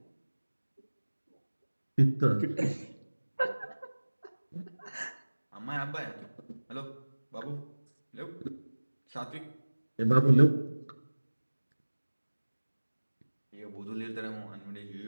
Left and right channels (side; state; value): both; inverted; correlation -1.00